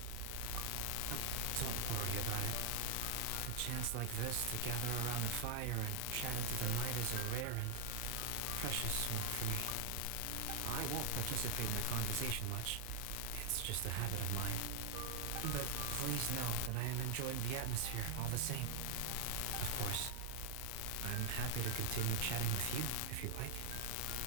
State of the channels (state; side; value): different; both; correlation 0.00